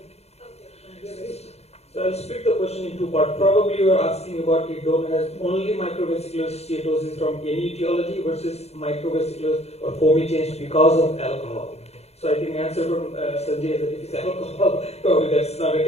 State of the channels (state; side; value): late; right; 0.31 ms